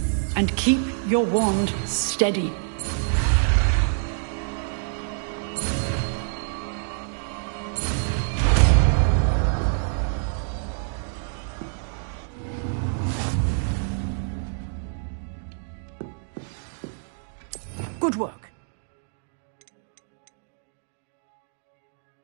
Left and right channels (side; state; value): left; silent; digital silence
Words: and keep your wand steady. Good work.